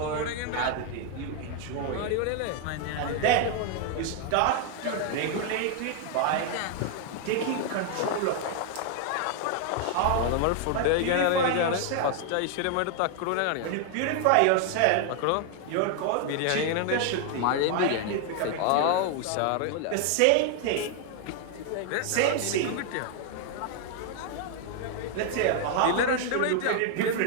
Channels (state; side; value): different; both; correlation 0.00